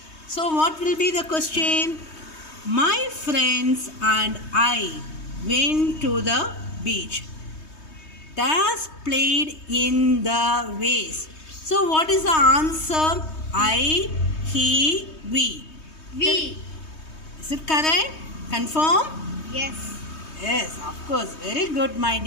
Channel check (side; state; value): right; late; 3.2 ms